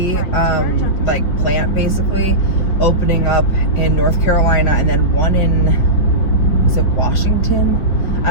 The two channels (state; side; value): late; right; 5.0 ms